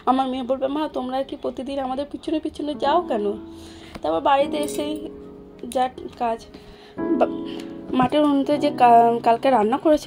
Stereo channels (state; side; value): identical; both; correlation 1.00